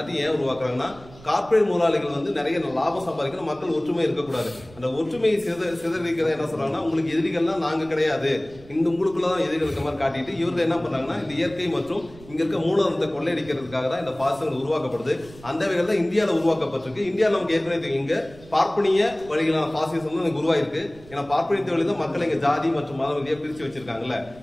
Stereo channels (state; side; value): noise; right; rumble, 21 dB below the sound